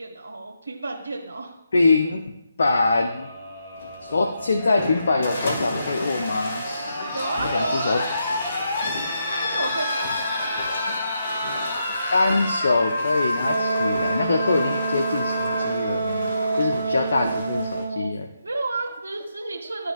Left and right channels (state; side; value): inverted; both; correlation -0.82